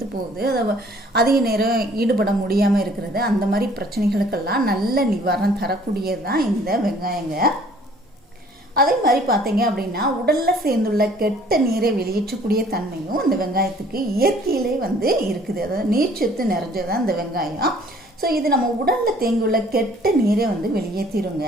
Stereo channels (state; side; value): normal; both; correlation 0.56